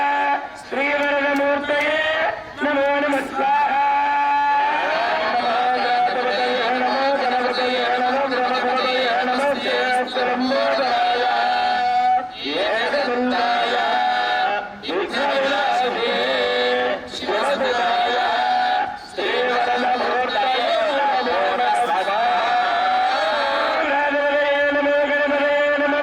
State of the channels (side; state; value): both; identical; correlation 1.00